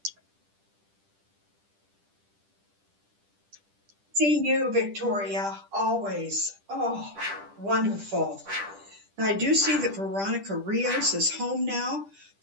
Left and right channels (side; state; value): left; late; 10 ms